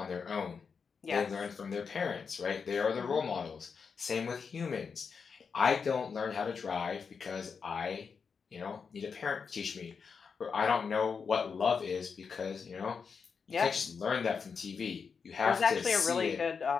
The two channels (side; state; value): right; quieter; 5.8 dB